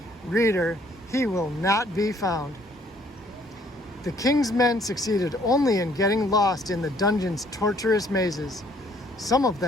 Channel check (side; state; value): both; normal; correlation 0.62